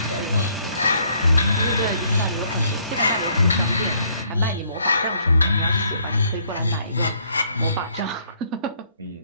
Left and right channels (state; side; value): inverted; both; correlation -0.66